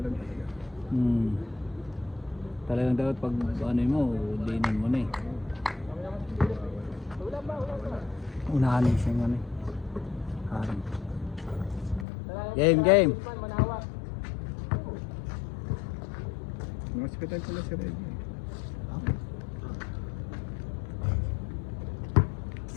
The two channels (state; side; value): drops out; right; at 12.1 s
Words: talaga. Talagang dapat pag ano mo, dinan mo na eh. Unahan mo siya ano eh. Harang. Game! Mga hospital pala si Reggie.